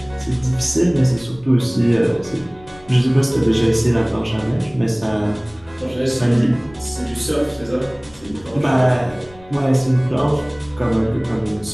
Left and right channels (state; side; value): noise; left; rumble, 24 dB below the sound